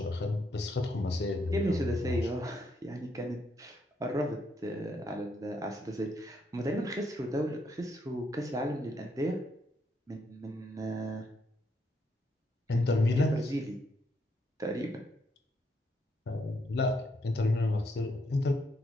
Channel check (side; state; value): both; normal; correlation 0.76